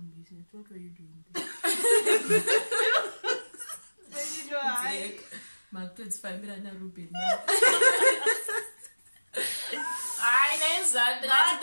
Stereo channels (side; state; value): both; inverted; correlation -1.00